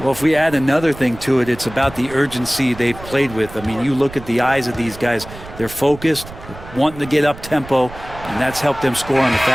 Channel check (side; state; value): right; noise; rumble, 16 dB below the sound